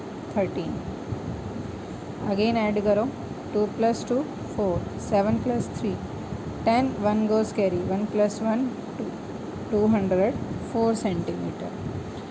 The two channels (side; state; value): both; identical; correlation 1.00